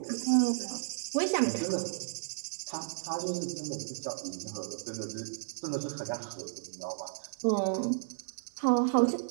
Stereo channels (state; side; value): silent; left; digital silence